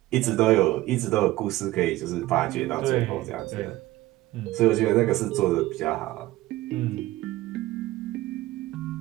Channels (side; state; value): left; quieter; 17.3 dB